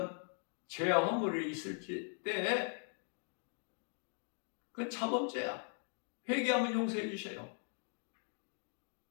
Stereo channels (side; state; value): right; silent; 51 dB below the other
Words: 죄와 허물이 있을 때 그건 자범죄야. 회개하면 용서해 주셔요.